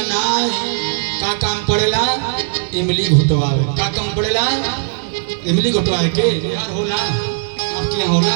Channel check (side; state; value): left; silent; digital silence